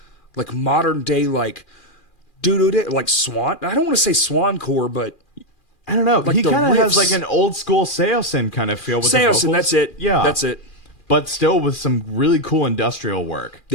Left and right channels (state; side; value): late; right; 2.4 ms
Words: modern day like like Swan. I don't want to say Swancore, but I don't know. like He the kind of has riffs. like an old school Seosin kind of feel with the Seosin, vocals. that's it. Yeah, That's it. But still with some really cool industrial work.